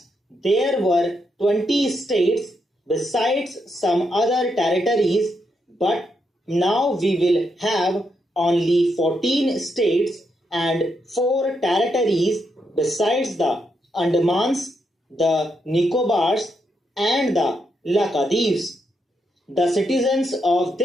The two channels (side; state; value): both; normal; correlation 0.81